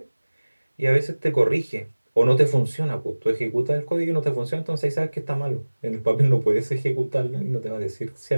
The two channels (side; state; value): both; inverted; correlation -1.00